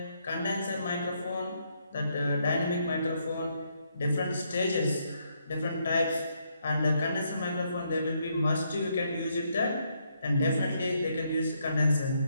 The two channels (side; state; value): both; inverted; correlation -0.75